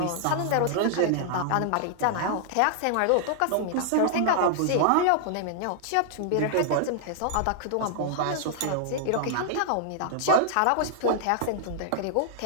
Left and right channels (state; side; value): different; both; correlation -0.01